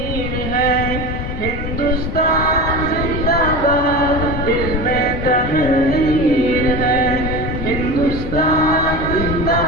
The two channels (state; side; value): normal; both; correlation 0.28